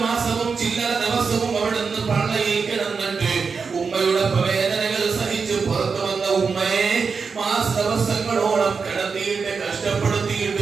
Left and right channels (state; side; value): quieter; left; 5.3 dB